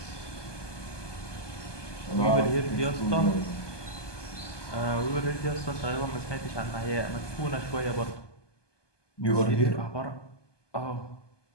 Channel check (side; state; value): right; late; 1.2 ms